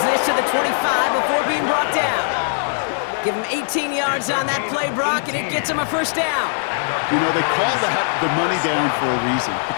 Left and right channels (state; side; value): silent; right; digital silence